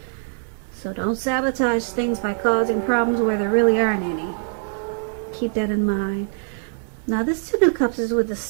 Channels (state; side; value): silent; left; digital silence